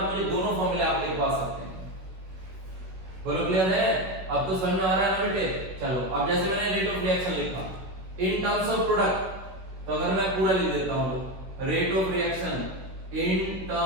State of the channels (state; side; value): late; left; 16 ms